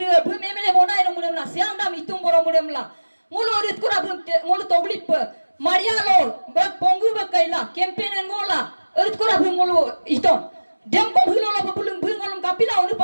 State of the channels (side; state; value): both; inverted; correlation -1.00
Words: bu MLA bonai no mulem la siang dam itung boro mulem la. Ngolo rit kura bu ngolo toglip Maria lo bak pongu bak kaila campaign ngola rit kura bu ngolo iton. Dem ko hulo la bulung bu ngolong kapila onu